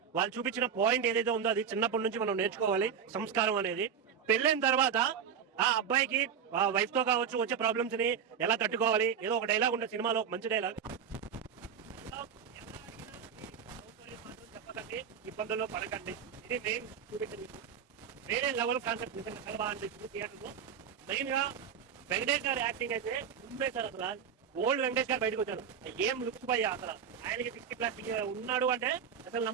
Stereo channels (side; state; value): left; quieter; 7.6 dB